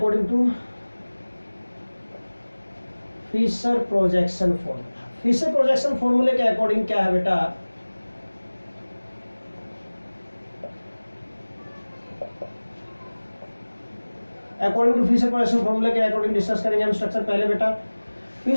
to Fischer projection formula, Fischer projection फॉर्मूले के अकॉर्डिंग क्या है बेटा? अकॉर्डिंग टू फिशर प्रोजेक्शन फॉर्मूले के अकॉर्डिंग डिस्कस करेंगे हम स्ट्रक्चर। पहले बेटा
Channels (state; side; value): inverted; both; correlation -1.00